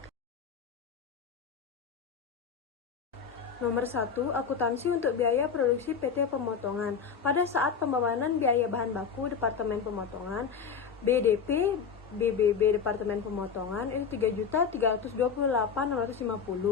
Nomor 1, akuntansi untuk biaya produksi PT Pemotongan. Pada saat pembebanan biaya bahan baku Departemen Pemotongan, BDP, BBB Departemen Pemotongan itu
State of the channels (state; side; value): quieter; right; 6.4 dB